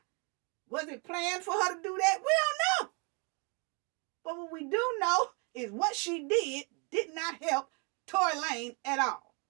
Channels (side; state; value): left; quieter; 33.9 dB